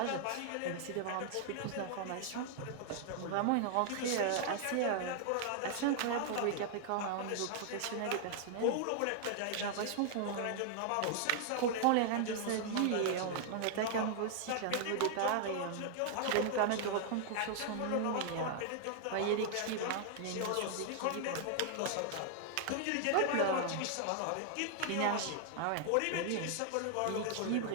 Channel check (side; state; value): both; different; correlation 0.00